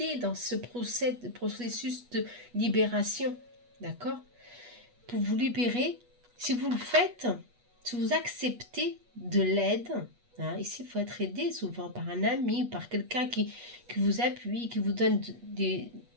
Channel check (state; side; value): late; left; 8.3 ms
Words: dans ce processus de libération, d'accord? Pour vous libérer, si vous le faites, si vous acceptez de l'aide, hein, ici il faut être aidé souvent par un ami, par quelqu'un qui vous appuie, qui vous donne